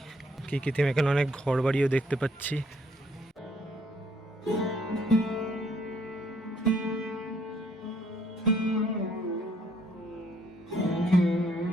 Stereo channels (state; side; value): normal; both; correlation 0.66